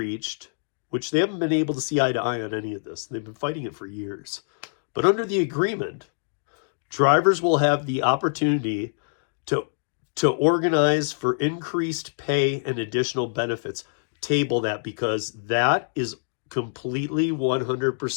which they haven't been able to see eye to eye on any of this, they've been fighting it for years. But under the agreement, drivers will have the opportunity to organize for increased pay and additional benefits. Table that, because that is completely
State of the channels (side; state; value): right; silent; digital silence